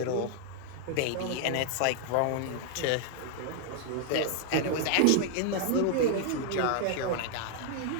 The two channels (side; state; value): both; different; correlation 0.00